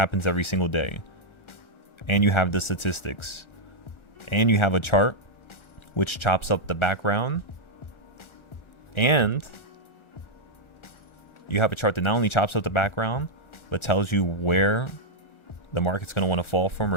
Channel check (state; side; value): late; right; 1.3 ms